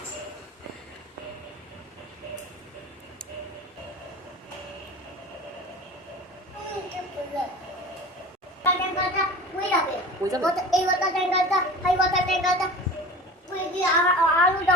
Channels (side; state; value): both; normal; correlation 0.36